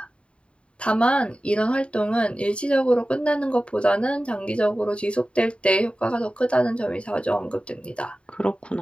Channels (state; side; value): late; right; 0.057 ms